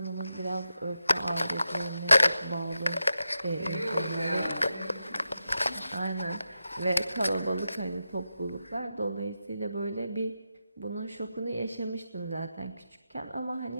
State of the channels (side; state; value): both; inverted; correlation -0.89